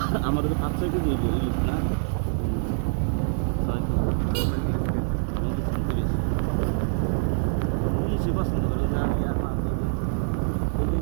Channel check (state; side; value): silent; left; 57 dB below the other